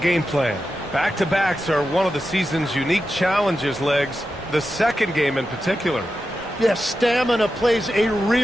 plan. Back-to-backs are one of the season's unique challenges, Legs. The second game in particular. Yes, stamina plays a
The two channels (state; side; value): normal; both; correlation 0.90